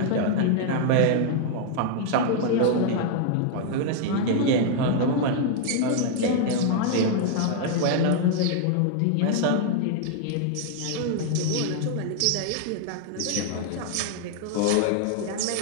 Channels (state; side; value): different; both; correlation 0.00